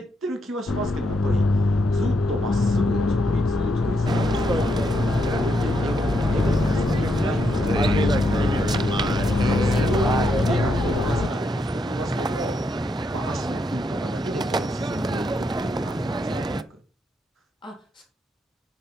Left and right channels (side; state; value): both; normal; correlation 0.79